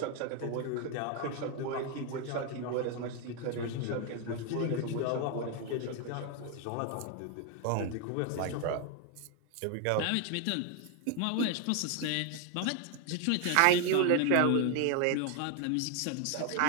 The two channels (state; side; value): different; both; correlation 0.01